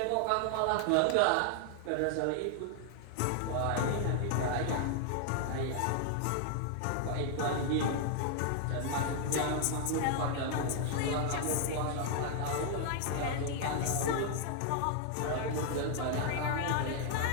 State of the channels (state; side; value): different; both; correlation 0.00